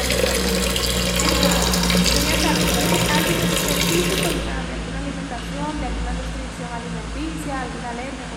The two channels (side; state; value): both; identical; correlation 1.00